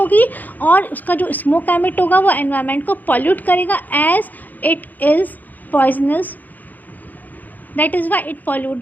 और उसका जो स्मोक एमिट होगा वो एनवायरनमेंट को पॉल्यूट करेगा as it is poisonous. That is why it pollute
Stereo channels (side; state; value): right; late; 0.083 ms